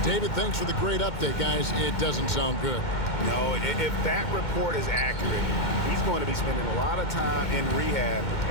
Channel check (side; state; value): right; late; 2.2 ms